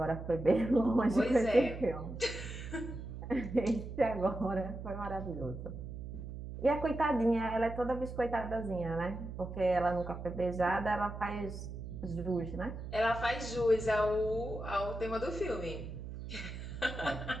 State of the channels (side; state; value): right; noise; hum, 8 dB below the sound